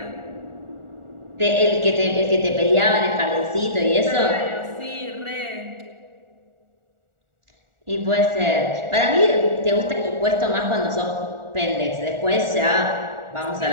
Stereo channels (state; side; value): late; left; 1.4 ms